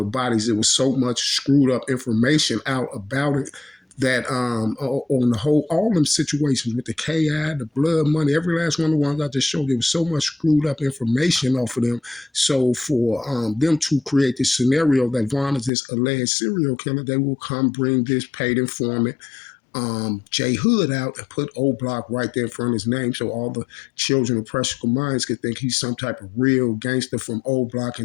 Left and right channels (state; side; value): drops out; right; at 15.7 s